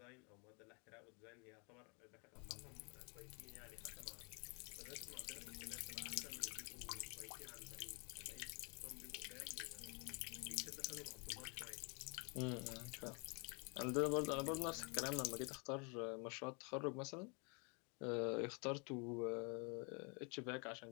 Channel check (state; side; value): quieter; right; 34.0 dB